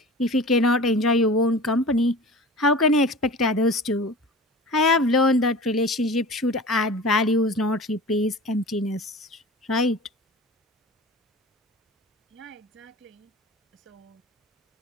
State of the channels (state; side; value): normal; both; correlation 0.37